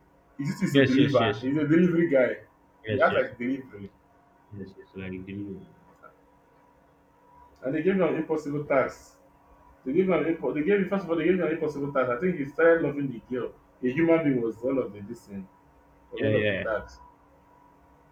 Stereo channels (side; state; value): both; identical; correlation 1.00